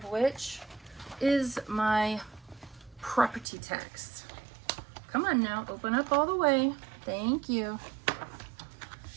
which is my property tax. Come on now, open up all the way. Thank you.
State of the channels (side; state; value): left; drops out; at 3.5 s